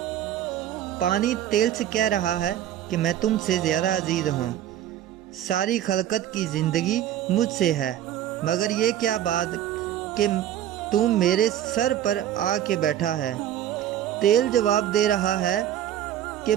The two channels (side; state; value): left; quieter; 11.3 dB